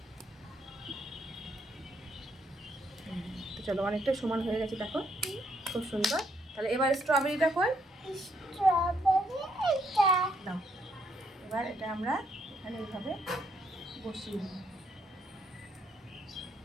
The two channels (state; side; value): normal; both; correlation 0.73